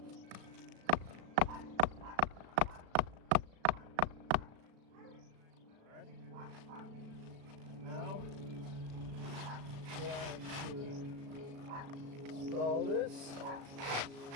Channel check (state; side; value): late; left; 36 ms